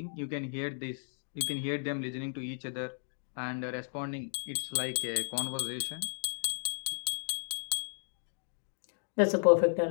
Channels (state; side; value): silent; right; digital silence